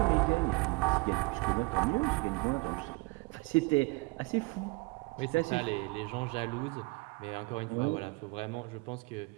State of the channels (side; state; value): left; quieter; 26.8 dB